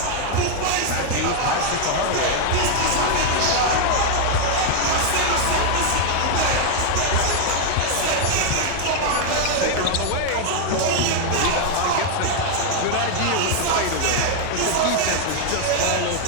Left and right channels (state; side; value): different; both; correlation 0.00